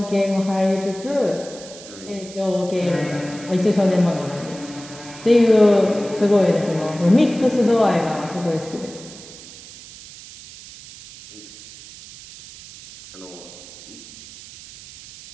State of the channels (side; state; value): right; noise; hiss, 17 dB below the sound